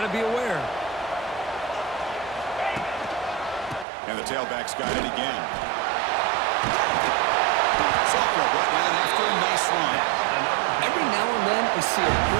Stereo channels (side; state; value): left; drops out; at 3.9 s